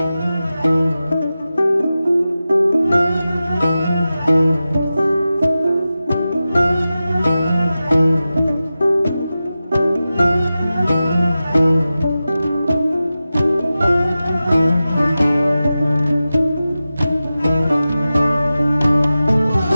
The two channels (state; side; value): inverted; both; correlation -0.94